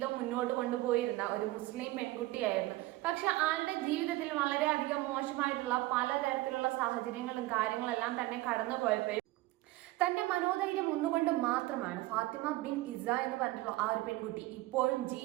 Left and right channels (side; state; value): left; quieter; 18.6 dB